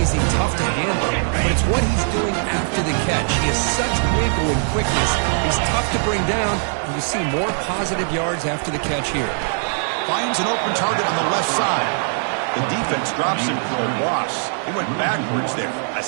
is he tough to handle, but it's what he's doing after the catch. He has such wiggle and quickness. He's tough to bring down, and you see more positive yards after the catch here. Finds an open target on the left side. The defense drops him for a loss. He went backwards there. A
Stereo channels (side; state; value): left; silent; 57 dB below the other